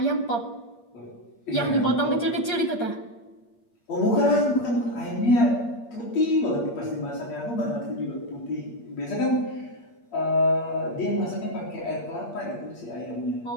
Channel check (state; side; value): late; right; 8.5 ms